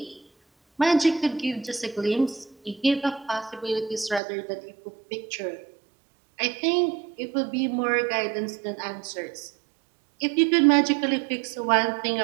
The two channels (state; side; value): drops out; left; at 4.2 s